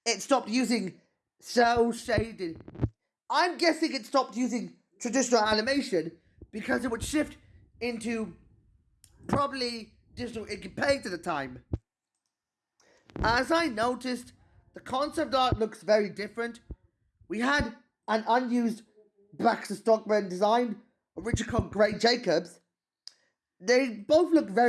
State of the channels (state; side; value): identical; both; correlation 1.00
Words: it stopped using cel shaded. I'm guessing it stopped using traditional animation because it would shift into probably digital ink and paint at the time. As I noticed, the concept art looks very different. We had an unused Baxter Stockman design, originally called Gray Jacobs. They both look